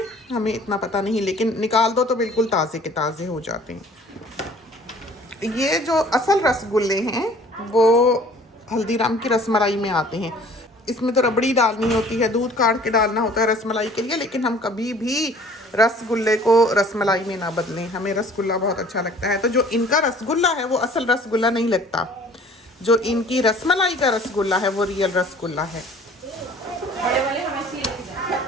हमें इतना पता नहीं, लेकिन निकाल दो तो बिल्कुल ताज़े के ताज़े हो जाते हैं। ये जो असल रसगुल्ले हैं वो हल्दीराम की रसमलाई में आते हैं। इसमें तो रबड़ी डालनी होती है, दूध काट के डालना होता है रसमलाई के लिए, लेकिन हम कभी भी रसगुल्ले को रसमलाई में ना बदलें। हमें रसगुल्ला बहुत अच्छा लगता है। तो जो इनका रसगुल्ला है वो असल रसगुल्ला नहीं लगता, जो इनकी रसमलाई का रसगुल्ला है वो रियल रसगुल्ला है।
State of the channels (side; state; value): both; normal; correlation 0.51